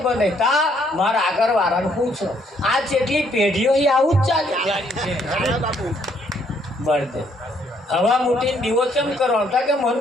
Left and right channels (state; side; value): normal; both; correlation 0.68